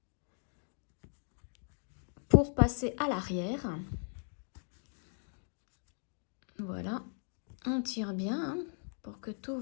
Pour passer à l'arrière. Voilà. On tire bien hein, pour que tout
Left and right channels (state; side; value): silent; right; 53 dB below the other